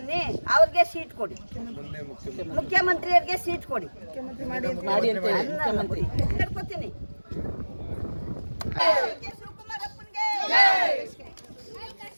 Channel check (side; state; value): both; inverted; correlation -1.00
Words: ಅವ್ರಿಗೆ ಸೀಟ್ ಕೊಡಿ, ಮುಖ್ಯಮಂತ್ರಿಯವ್ರಿಗೆ ಸೀಟ್ ಕೊಡಿ. ಹೇಳ್ಕೊತೀನಿ.